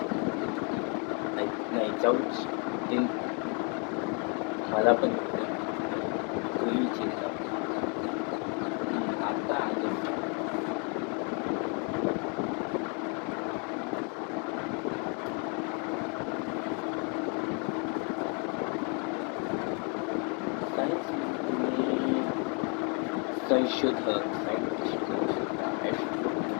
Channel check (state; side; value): quieter; right; 36.6 dB